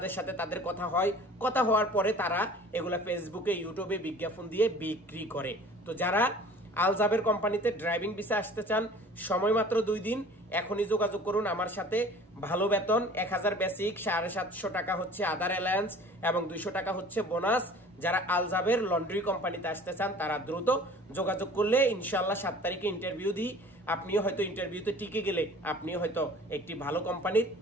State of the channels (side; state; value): both; normal; correlation 0.46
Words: সাথে তাদের কথা হয়, কথা হওয়ার পরে তারা এগুলা ফেসবুকে ইউটিউবে বিজ্ঞাপন দিয়ে বিক্রি করে। তো যারা আল জাবের কোম্পানিতে ড্রাইভিং ভিসা আসতে চান, সময় মাত্র 2 দিন, এখনই যোগাযোগ করুন আমার সাথে। ভালো বেতন, 1000 বেসিক, 750 টাকা হচ্ছে আদার অ্যালায়েন্স এবং 200 টাকা হচ্ছে বোনাস। যারা আল জাবের লন্ড্রি কোম্পানিতে আসতে চান তারা দ্রুত যোগাযোগ করলে ইনশাআল্লাহ 7 তারিখে ইন্টারভিউ দিই। আপনিও হয়তো ইন্টারভিউতে টিকে গেলে আপনিও হয়তো একটি ভালো কোম্পানির